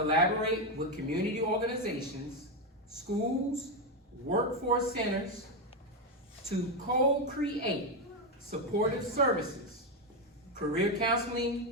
with community organizations, schools, workforce centers to co-create supportive services, career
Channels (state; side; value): normal; both; correlation 0.07